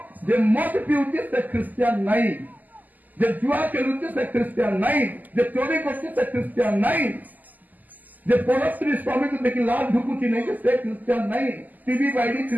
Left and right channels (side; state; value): left; late; 0.083 ms